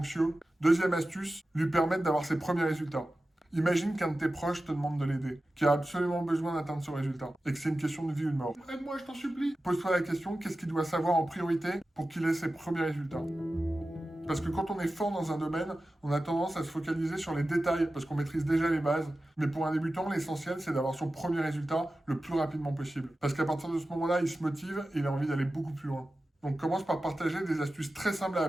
Deuxième astuce, lui permettre d'avoir ses premiers résultats. Imagine qu'un de tes proches te demande de l'aider, qui a absolument besoin d'atteindre ce résultat, et que c'est une question de vie ou de mort. Aide-moi, je t'en supplie. Pose-toi la question, qu'est-ce qu'il doit savoir en priorité pour qu'il ait ses premiers résultats? Parce que quand on est fort dans un domaine, on a tendance à se focaliser sur les détails, parce qu'on maîtrise déjà les bases. Mais pour un débutant, l'essentiel, c'est d'avoir son premier résultat le plus rapidement possible. Parce qu'à partir de ce moment-là, il se motive et il a envie d'aller beaucoup plus loin. Donc commence par partager des astuces très simples à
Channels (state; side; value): normal; both; correlation 0.94